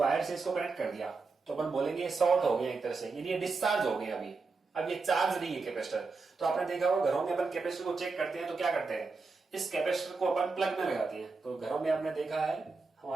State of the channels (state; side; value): quieter; left; 4.2 dB